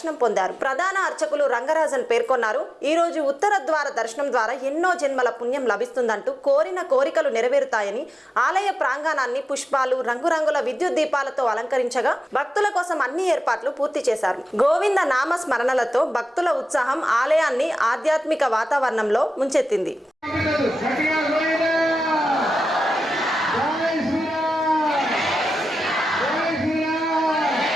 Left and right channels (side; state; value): both; normal; correlation 0.93